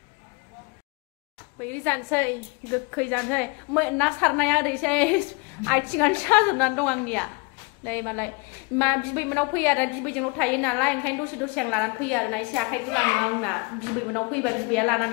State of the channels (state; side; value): quieter; right; 29.9 dB